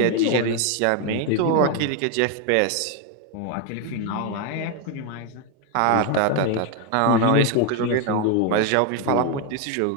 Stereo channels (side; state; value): both; different; correlation 0.01